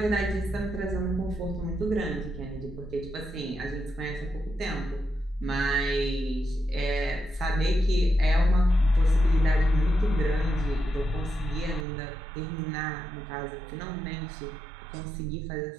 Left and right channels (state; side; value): drops out; left; at 11.9 s